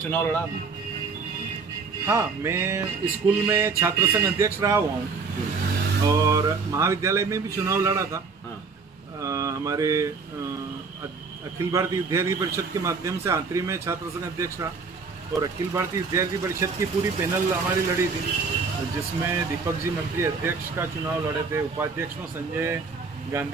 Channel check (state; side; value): quieter; left; 4.8 dB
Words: लड़ा आपने? हाँ, मैं स्कूल में छात्र संघ अध्यक्ष रहा हुआ हूँ और महाविद्यालय में भी चुनाव लड़ा था। हाँ। हमारे अखिल भारतीय विद्यार्थी परिषद के माध्यम से आंतरी में छात्र संघ अध्यक्ष रहा, और अखिल भारतीय विद्यार्थी परिषद की पूरी पैनल हमारी लड़ी थी, जिसमें दीपक जी मंत्री अध्यक्ष का चुनाव लड़े थे, उपाध्यक्ष में संजय